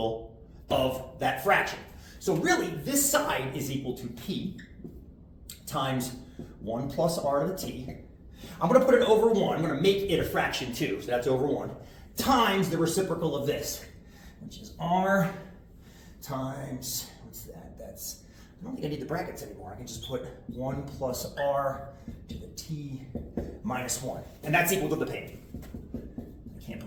of that fraction. So really, this side is equal to p times 1 plus r to the t. I'm going to put it over 1. I'm going to make it a fraction too, so that's over 1, times the reciprocal of this, which is r times, what's that? That's, I don't think I need the brackets anymore. I can just put 1 plus r to the t minus 1. And that's equal to the payment. I can't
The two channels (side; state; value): both; identical; correlation 1.00